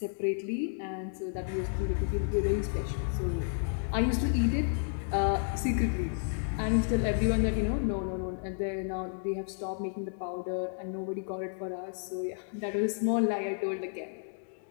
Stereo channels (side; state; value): right; silent; digital silence